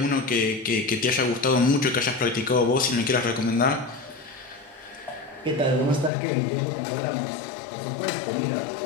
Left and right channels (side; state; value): right; drops out; at 6.1 s